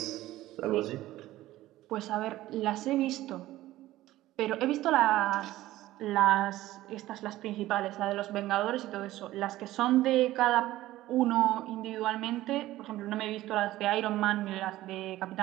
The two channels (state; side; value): quieter; left; 15.8 dB